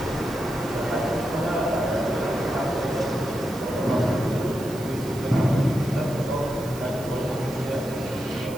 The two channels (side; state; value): right; noise; hiss, 16 dB below the sound